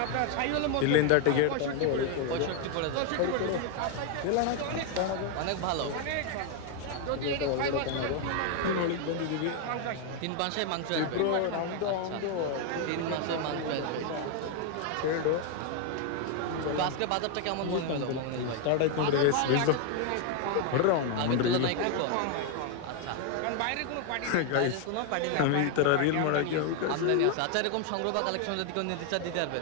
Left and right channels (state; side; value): different; both; correlation 0.01